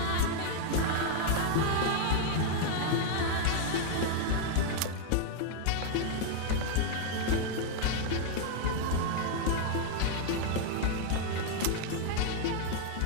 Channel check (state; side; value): different; both; correlation 0.00